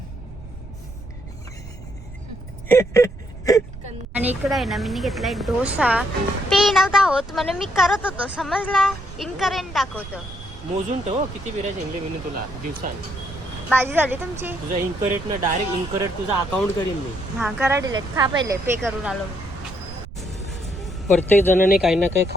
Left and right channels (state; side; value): noise; right; rumble, 14 dB below the sound